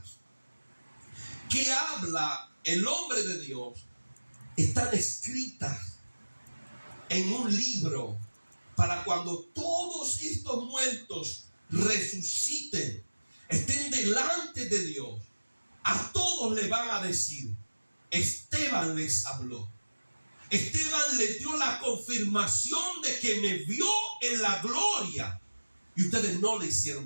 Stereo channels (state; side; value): inverted; both; correlation -1.00